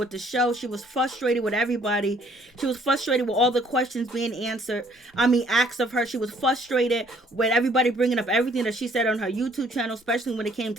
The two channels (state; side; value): normal; both; correlation 0.61